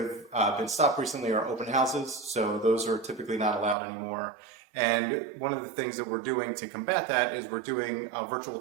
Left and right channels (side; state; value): left; drops out; at 3.8 s